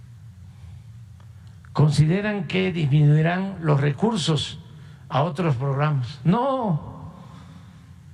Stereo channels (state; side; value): identical; both; correlation 1.00